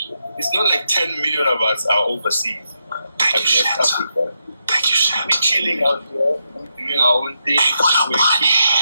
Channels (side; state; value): both; inverted; correlation -0.83